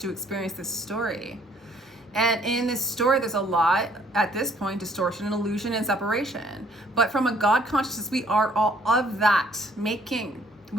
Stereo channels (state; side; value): normal; both; correlation 0.62